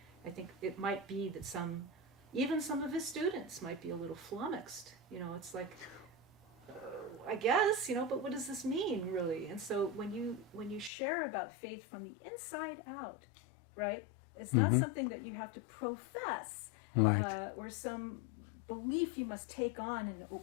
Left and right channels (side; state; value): right; drops out; at 10.9 s